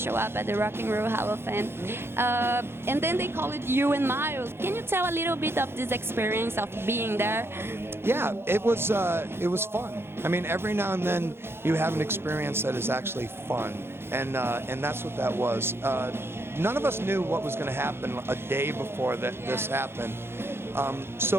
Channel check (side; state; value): left; late; 0.11 ms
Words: up at the Rock and Roll Hall of Fame, and then they called you and Miles. Can you tell a little bit of this experience of being there? Yeah, it was fun. I mean, every now and then you have an experience that is actually fun, and that's what that was. None of us knew what was going to happen a day before this happened.